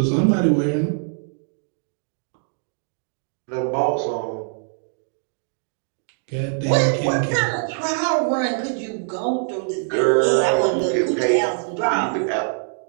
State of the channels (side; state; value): left; silent; digital silence